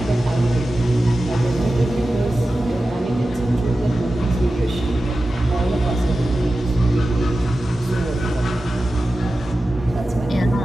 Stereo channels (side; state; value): both; normal; correlation 0.94